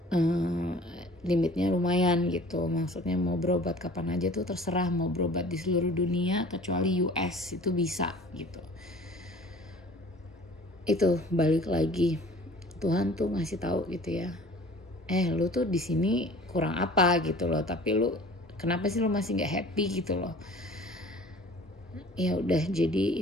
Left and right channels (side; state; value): both; normal; correlation 0.47